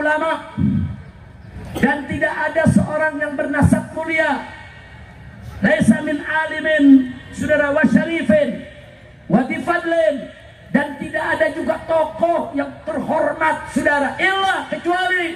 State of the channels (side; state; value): both; identical; correlation 1.00